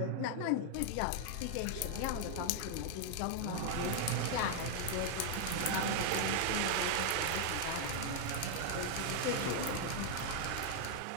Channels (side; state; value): both; different; correlation 0.00